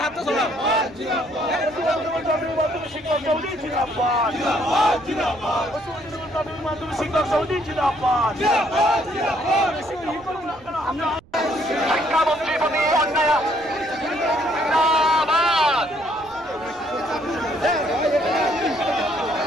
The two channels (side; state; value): right; noise; rumble, 26 dB below the sound